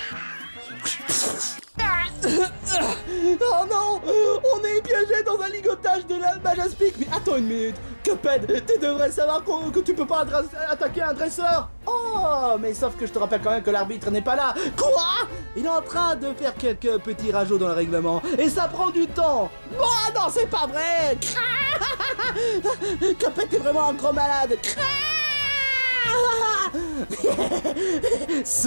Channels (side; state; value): both; inverted; correlation -1.00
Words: Oh non, on est piégé dans un ligotage de la Majaspic. Mais attends une minute, Cuphead, tu devrais savoir que tu peux pas attaquer un dresseur. Oh, mais sauf que je te rappelle quand même que l'arbitre n'est pas là. Quoi? Il est en train de faire quelques petits rajouts dans le règlement et ça prend du temps. Oh non, c'est pas vrai. Cuphead, t'es vraiment un gros malade.